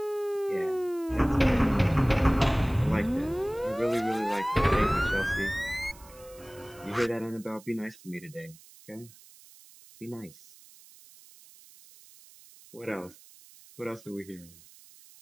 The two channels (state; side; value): noise; right; hiss, 23 dB below the sound